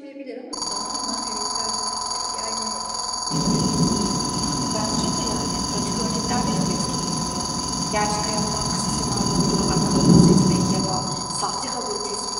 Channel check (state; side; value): identical; both; correlation 1.00